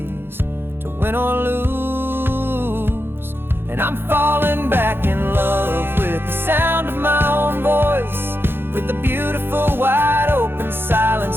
to win or lose. And I'm falling back in love with the sound of my own voice, with the beautiful wide open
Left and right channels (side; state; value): left; late; 0.10 ms